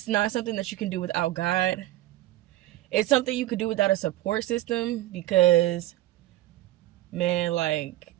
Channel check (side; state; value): left; quieter; 15.8 dB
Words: not something that you can do without God. It's something you could do without a support system, because, man, like,